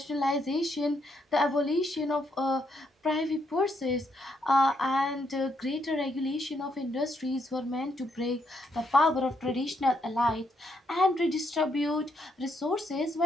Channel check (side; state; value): both; normal; correlation 0.76